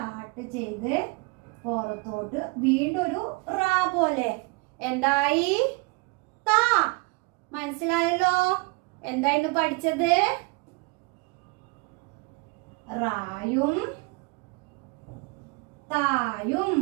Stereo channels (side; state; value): left; quieter; 28.7 dB